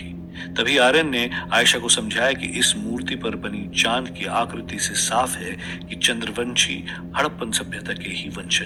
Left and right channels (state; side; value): identical; both; correlation 1.00